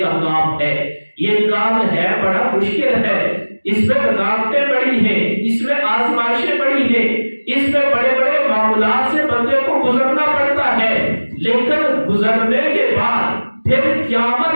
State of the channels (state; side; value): inverted; both; correlation -1.00